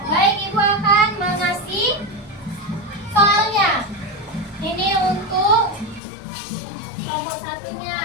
Baik, Ibu akan mengasih soalnya. Ini untuk kelompok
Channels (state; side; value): drops out; right; at 6.0 s